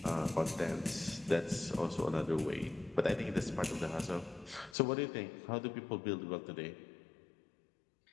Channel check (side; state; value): right; drops out; at 4.8 s